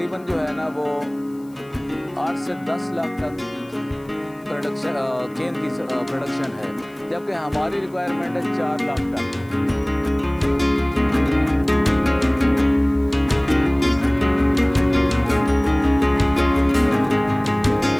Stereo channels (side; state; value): left; noise; hiss, 30 dB below the sound